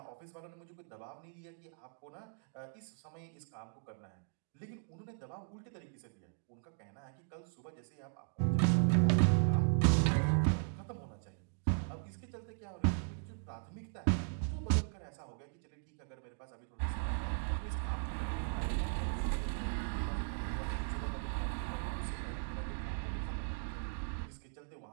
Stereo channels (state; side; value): silent; left; digital silence